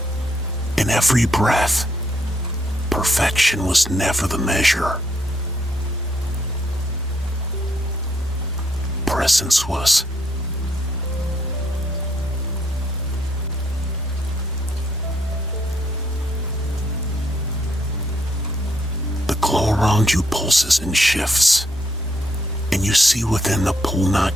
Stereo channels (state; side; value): normal; both; correlation 0.72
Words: in every breath, perfection was never the measure. Presence was. The glow around you pulses and shifts, and you see within the pool